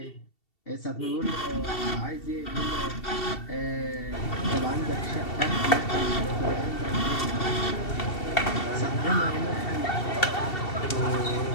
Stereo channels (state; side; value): late; right; 2.7 ms